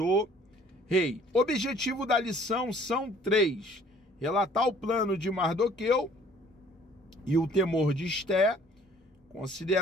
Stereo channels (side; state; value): both; normal; correlation 0.56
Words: rei. O objetivo da lição são 3. Relatar o plano de Mardoqueu e o temor de Esté,